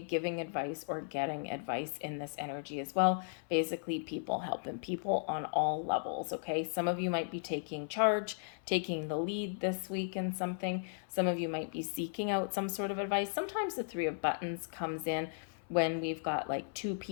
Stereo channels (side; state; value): right; silent; 54 dB below the other